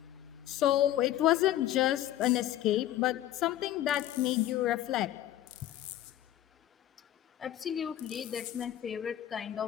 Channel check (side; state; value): right; quieter; 12.9 dB